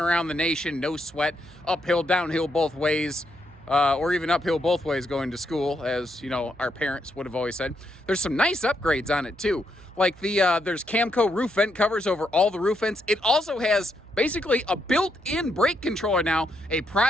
the nation, no sweat, uphill, downhill both ways, or even uphill both ways going to school, as you know, our parents would have always said. There's some nice upgrades on it too. Like there's Camco roof vent covers over all the roof vents. It also has basically a built-in brake controller now, a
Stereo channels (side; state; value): right; noise; hum, 24 dB below the sound